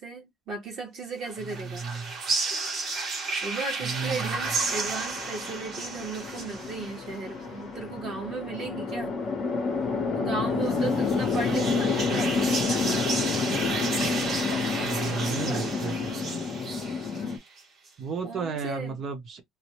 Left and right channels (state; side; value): normal; both; correlation 0.63